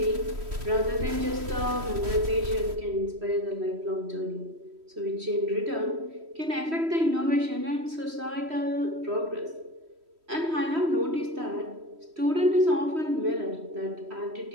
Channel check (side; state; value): left; late; 3.1 ms